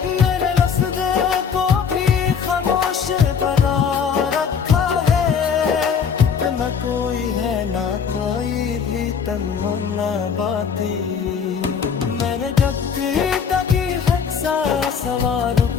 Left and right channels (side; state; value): right; quieter; 6.7 dB